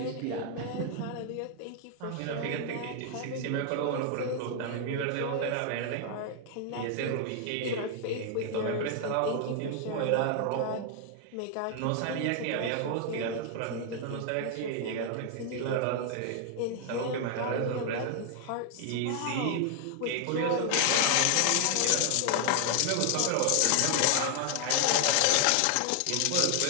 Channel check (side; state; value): both; different; correlation 0.00